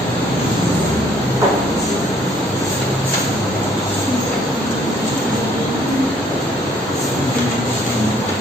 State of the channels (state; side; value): normal; both; correlation 0.62